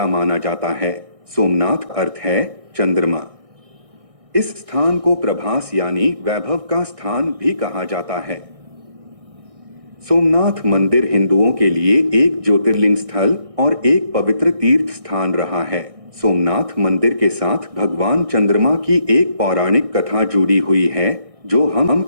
माना जाता है। सोमनाथ अर्थ है चंद्रमा। इस स्थान को प्रभास यानी वैभव का स्थान भी कहा जाता है। सोमनाथ मंदिर हिंदुओं के लिए एक ज्योतिर्लिंग स्थल और एक पवित्र तीर्थ स्थान रहा है। सोमनाथ मंदिर के साथ भगवान चंद्रमा की एक पौराणिक कथा जुड़ी हुई है जो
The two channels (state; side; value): late; left; 1.6 ms